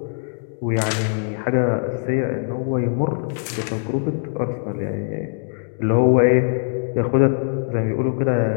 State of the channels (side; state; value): right; silent; digital silence